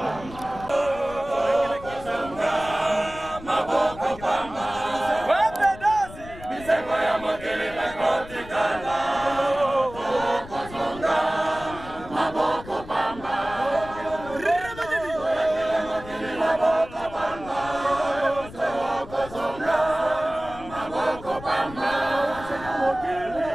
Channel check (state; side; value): noise; left; rumble, 16 dB below the sound